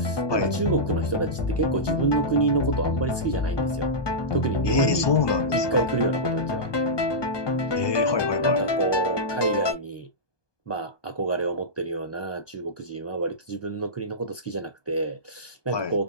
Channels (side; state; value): right; late; 1.2 ms